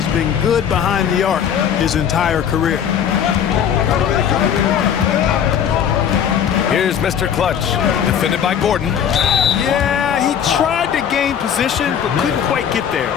been good behind the arc his entire career. Here's Mr. Clutch, defended by Gordon. Yeah, he tried to gain position, but couldn't quite get there.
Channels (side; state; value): right; quieter; 8.6 dB